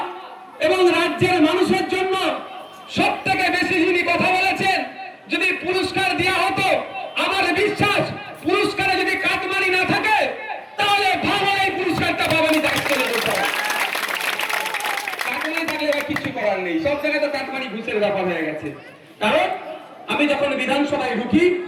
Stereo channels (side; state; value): both; identical; correlation 1.00